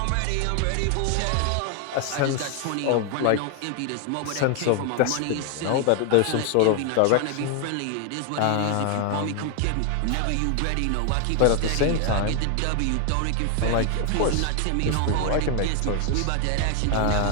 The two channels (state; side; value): different; both; correlation 0.00